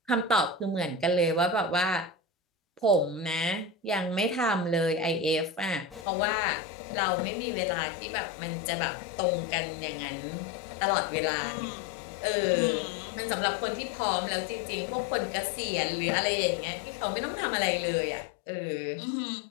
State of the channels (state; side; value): drops out; right; at 6.1 s